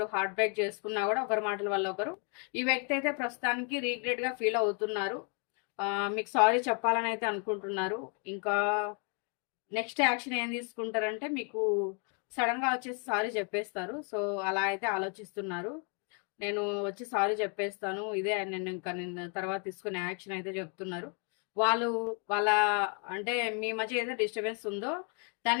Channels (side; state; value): right; quieter; 38.6 dB